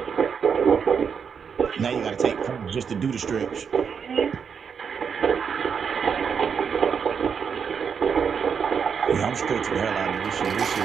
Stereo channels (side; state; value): left; quieter; 6.7 dB